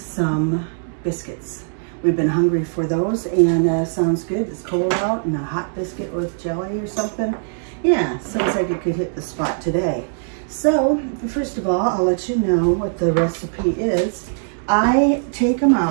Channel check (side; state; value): left; silent; digital silence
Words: biscuits. We've been hungry for those, and sounds good. It's cold out, and a hot biscuit with jelly or something. Yeah, sounds like it could hit the spot today. So first of all, I'll let you know what the recipe is. I take them